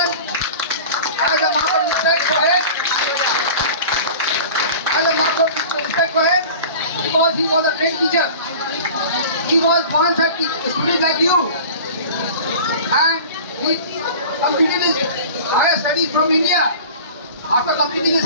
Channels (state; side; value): inverted; both; correlation -0.39